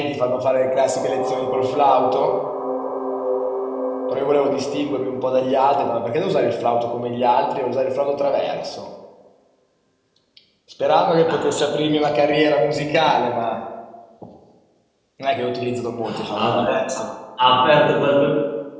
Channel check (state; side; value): identical; both; correlation 1.00